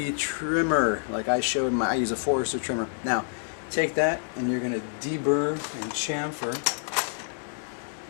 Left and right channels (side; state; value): right; silent; digital silence